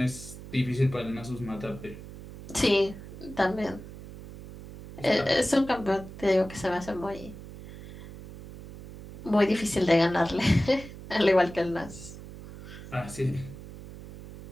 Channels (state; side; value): noise; right; hum, 14 dB below the sound